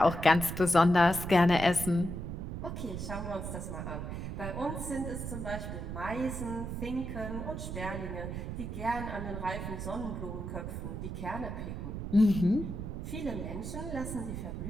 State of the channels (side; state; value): right; noise; rumble, 5 dB below the sound